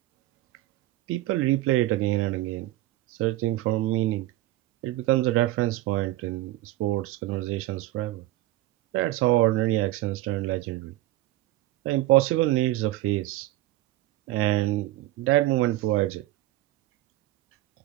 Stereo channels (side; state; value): left; quieter; 16.4 dB